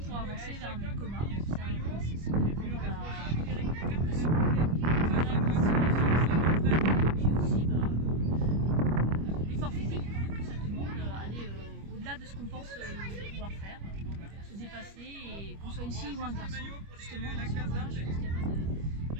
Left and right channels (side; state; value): left; late; 25 ms